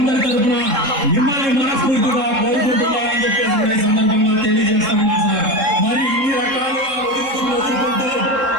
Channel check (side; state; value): left; late; 3.7 ms